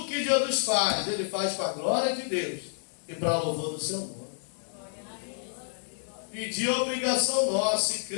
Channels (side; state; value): right; silent; 58 dB below the other